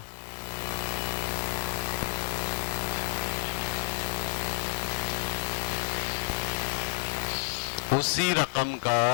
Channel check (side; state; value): right; silent; digital silence